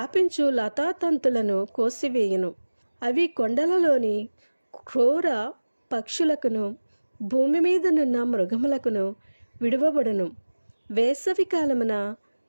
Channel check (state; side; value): inverted; both; correlation -1.00